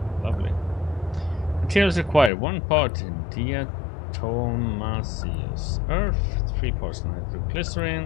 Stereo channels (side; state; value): right; drops out; at 2.3 s